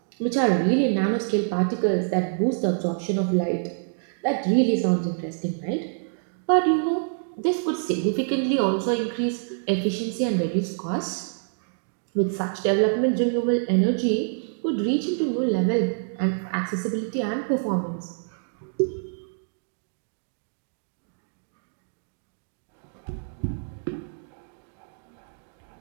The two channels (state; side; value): silent; left; digital silence